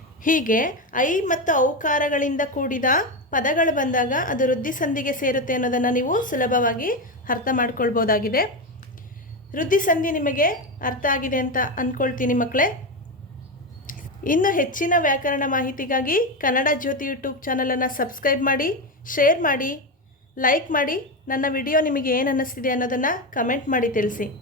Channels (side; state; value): both; normal; correlation 0.14